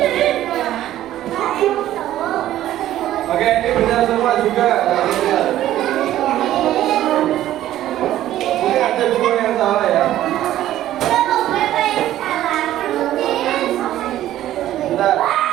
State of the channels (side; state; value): left; quieter; 13.3 dB